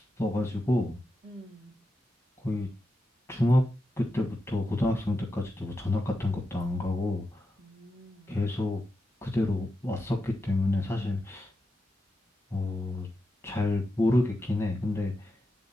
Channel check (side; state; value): both; normal; correlation 0.88